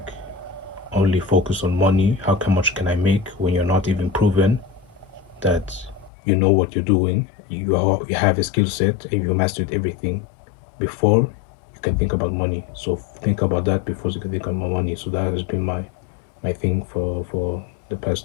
only focus on money. How much can I make when you're not even proven that you know what you're doing? You have a skill set and you mastered everything before you can think about money. So think about that before you can think about money. So that has been my thing for the past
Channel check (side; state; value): right; drops out; at 6.1 s